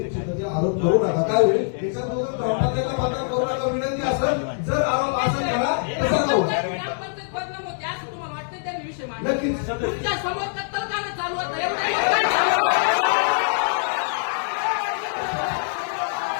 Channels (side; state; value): right; silent; digital silence